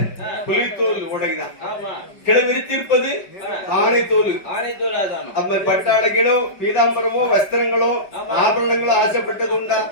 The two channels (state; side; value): late; right; 5.2 ms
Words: புலித்தோல் உடைதான், கிளை விரித்திருப்பது ஆணை தோல். அப்ப பட்டாடைகளோ பீதாம்பரமோ வஸ்திரங்களோ ஆபரணங்களோ ஆசைப்பட்டது உண்டா,